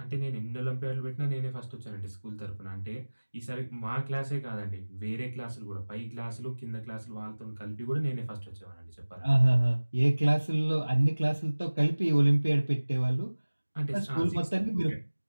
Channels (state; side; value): inverted; both; correlation -1.00